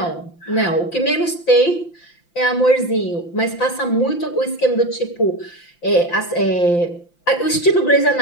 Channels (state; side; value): late; right; 5.8 ms